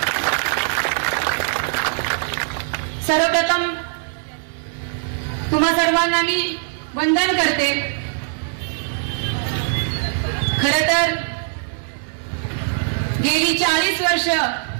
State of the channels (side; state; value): left; silent; digital silence